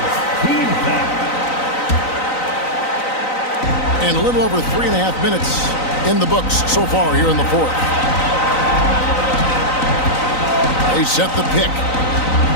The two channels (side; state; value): right; late; 3.9 ms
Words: And a little over 3.5 minutes in the books so far here in the 4th. They set the pick.